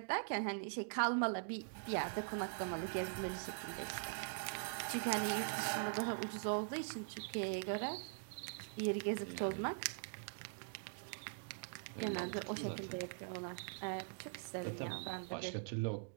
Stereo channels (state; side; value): silent; left; digital silence